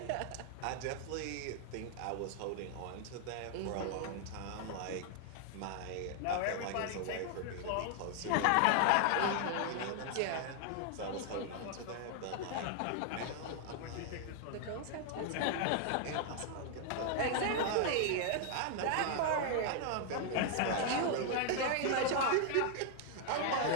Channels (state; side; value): different; both; correlation 0.00